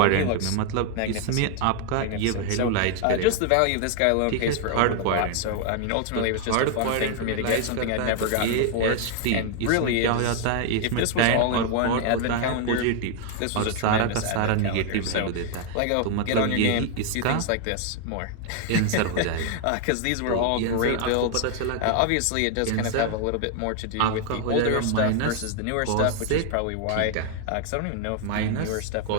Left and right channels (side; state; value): both; different; correlation 0.00